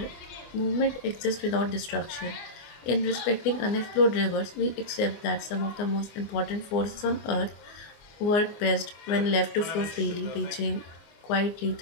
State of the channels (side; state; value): right; late; 24 ms